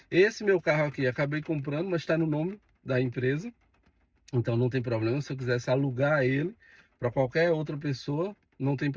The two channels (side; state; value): both; identical; correlation 1.00